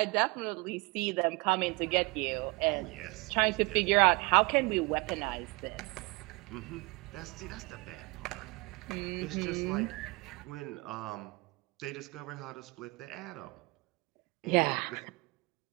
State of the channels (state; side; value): quieter; left; 26.5 dB